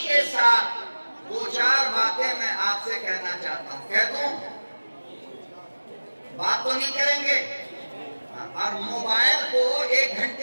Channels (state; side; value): inverted; both; correlation -1.00